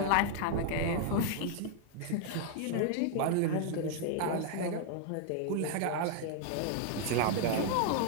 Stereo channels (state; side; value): different; both; correlation 0.00